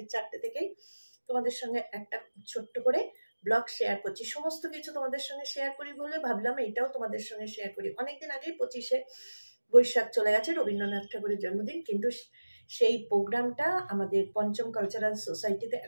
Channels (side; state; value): both; inverted; correlation -1.00